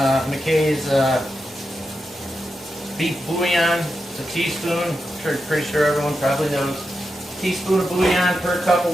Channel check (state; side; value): normal; both; correlation 0.88